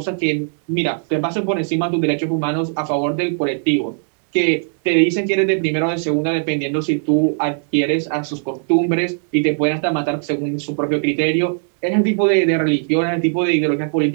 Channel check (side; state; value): left; silent; 62 dB below the other